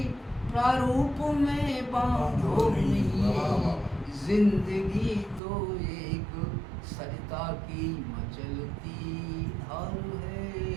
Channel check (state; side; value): drops out; left; at 5.4 s